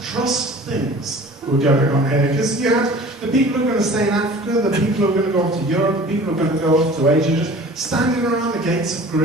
trust things were going on here, because you had the people who are going to stay in Africa, the people who are going to go off to Europe, the people who are going to go off to Asia, just standing around the gates of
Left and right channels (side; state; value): both; normal; correlation 0.44